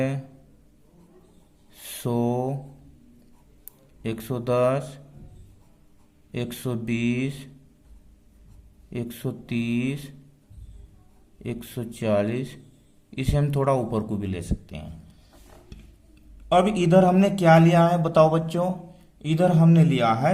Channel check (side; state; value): both; identical; correlation 1.00